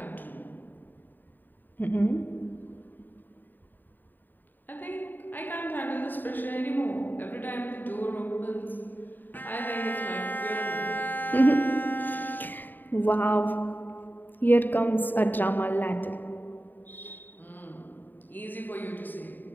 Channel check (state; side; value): late; right; 0.090 ms